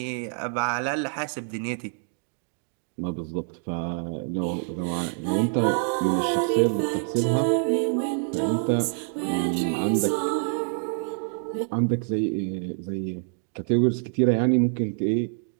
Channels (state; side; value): silent; left; 61 dB below the other